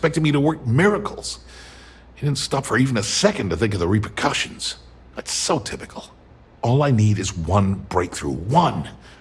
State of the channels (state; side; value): identical; both; correlation 1.00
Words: me to work miracles. He didn't stop for even a second to think of the repercussions. That's so typical. All I need is one breakthrough, one,